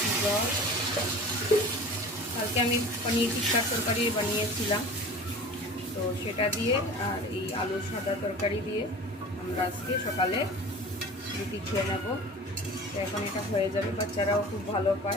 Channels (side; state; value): both; normal; correlation 0.39